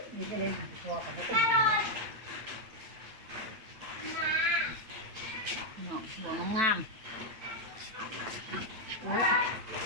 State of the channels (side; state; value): left; late; 8.8 ms